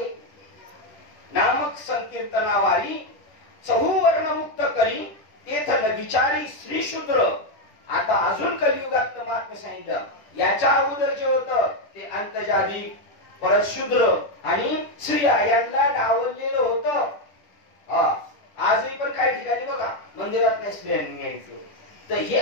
नामक संकीर्तनावारी चहूवर्ण मुक्त करी तेथल विचारी श्री शूद्र. आता अजून कलियुगात महात्म्य सांगितलं. याच्या अगोदर जे होतं ते अंतजादी, परत शूद्र आणि स्त्रिया यांना डावललेलं होतं. आजही पण काही ठिकाणी बघा मंदिरात नाही स्त्रियांनी यायचं. तर हे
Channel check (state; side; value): late; right; 10 ms